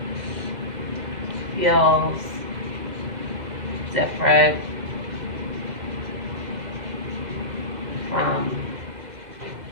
feels different from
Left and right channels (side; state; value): left; late; 2.0 ms